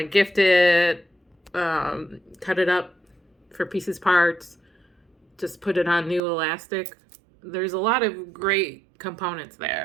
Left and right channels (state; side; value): drops out; left; at 6.2 s